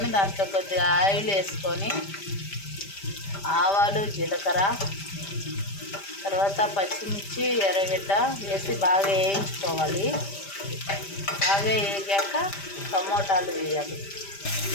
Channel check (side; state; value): right; late; 5.1 ms